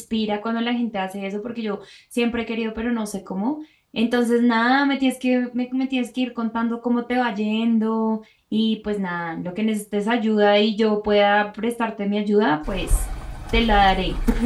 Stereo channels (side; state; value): both; identical; correlation 1.00